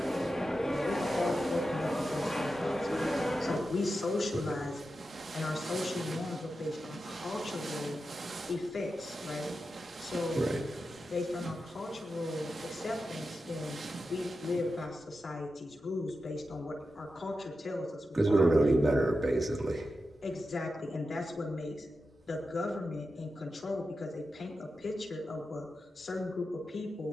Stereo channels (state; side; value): normal; both; correlation 0.90